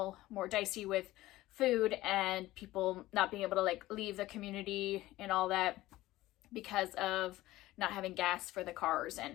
more dicey with food and people not being able to leave the community and all that because of not having gas for the cars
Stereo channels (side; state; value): right; quieter; 16.9 dB